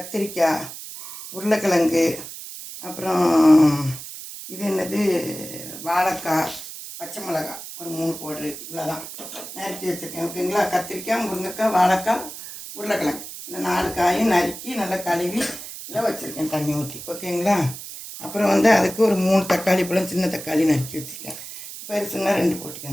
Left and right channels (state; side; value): noise; right; hiss, 11 dB below the sound